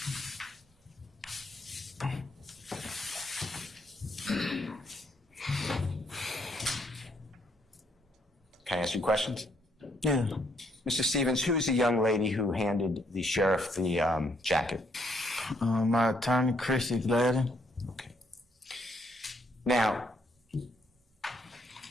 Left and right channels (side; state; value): both; normal; correlation 0.71